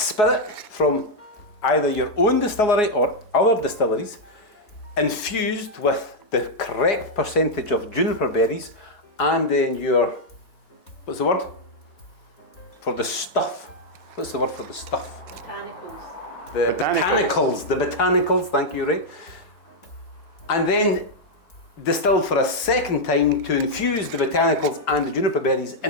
from either your own distillery or other distilleries, infused with the correct percentage of juniper berries, and then your, what's the word? For the stuff. What's the word for the stuff? Botanicals. The Botanicals. The botanicals, thank you, Ray. And then distilled for a second time to infuse the botanicals and the juniper berries in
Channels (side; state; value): right; late; 4.2 ms